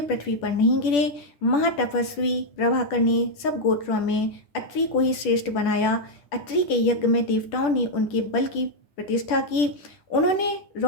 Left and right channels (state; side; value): late; right; 10 ms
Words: पृथ्वी पर नहीं गिरे। महातपस्वी प्रभाकर ने सब गोत्रों में अत्रि को ही श्रेष्ठ बनाया। अत्रि के यज्ञ में देवताओं ने उनके बल की प्रतिष्ठा की। उन्होंने